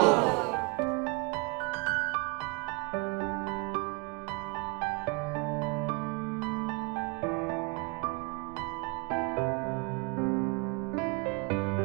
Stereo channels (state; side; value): quieter; left; 31.0 dB